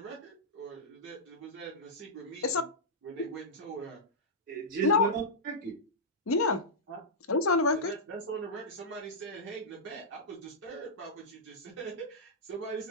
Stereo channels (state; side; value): normal; both; correlation -0.11